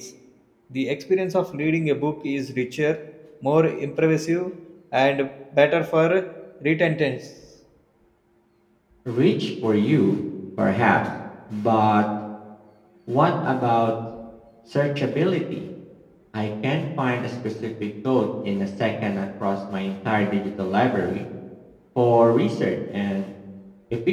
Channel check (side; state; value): both; identical; correlation 1.00